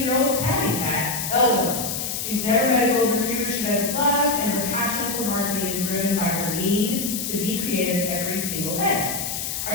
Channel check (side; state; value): left; noise; hiss, 4 dB below the sound